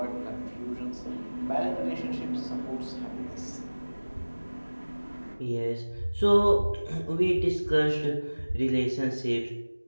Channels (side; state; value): both; inverted; correlation -1.00